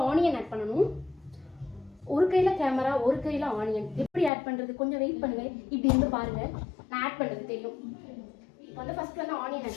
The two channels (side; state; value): right; drops out; at 4.3 s